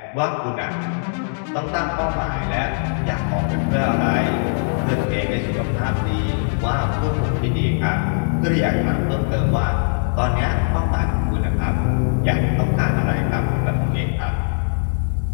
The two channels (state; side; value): silent; right; digital silence